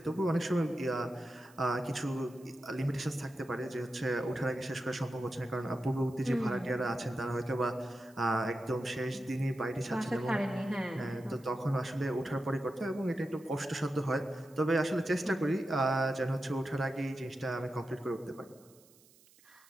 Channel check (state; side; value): noise; right; hiss, 27 dB below the sound